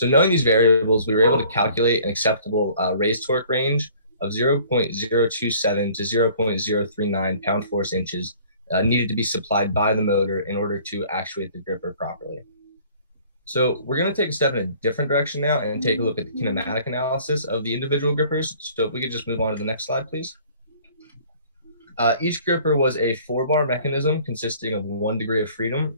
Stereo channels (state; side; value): inverted; both; correlation -0.53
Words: knowing these variables, we were able to calculate an acceptable raised torque range of 0.027 to 0.039 pound force inches needed to be supplied by the motor in order to actuate the gripper properly. So we're going to take a step in a different direction now and take a look at the kinematic analysis of the individual grippers. So if we could just move on to the next slide, please. Each gripper was a 4-bar mechanism consisting of 1 degree of